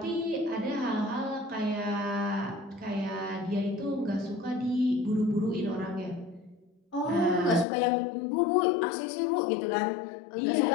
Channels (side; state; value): right; drops out; at 7.7 s